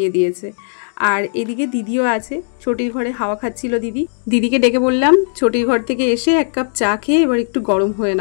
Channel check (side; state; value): right; silent; digital silence